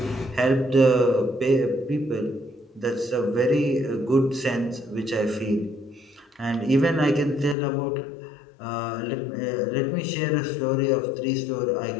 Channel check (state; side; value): drops out; right; at 7.6 s